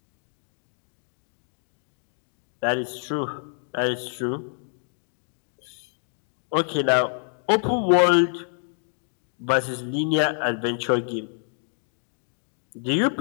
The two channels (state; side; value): silent; right; 60 dB below the other